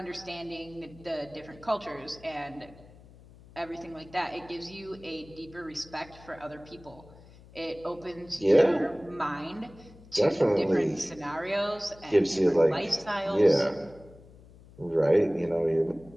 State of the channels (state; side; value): noise; left; hum, 22 dB below the sound